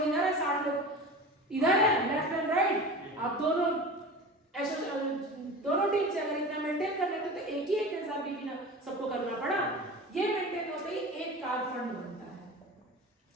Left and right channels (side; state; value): both; normal; correlation 0.33